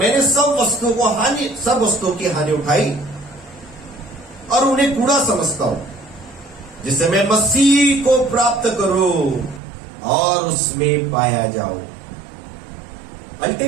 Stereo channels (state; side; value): drops out; left; at 9.6 s